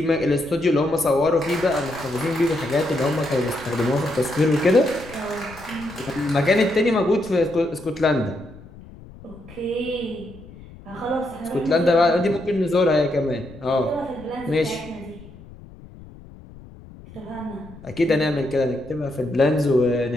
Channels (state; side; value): noise; left; rumble, 19 dB below the sound